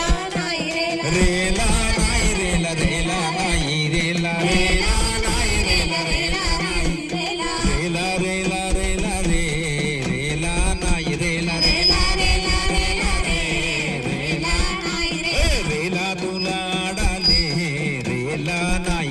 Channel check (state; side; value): identical; both; correlation 1.00